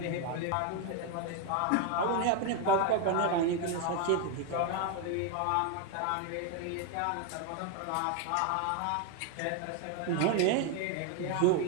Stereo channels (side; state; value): both; different; correlation 0.01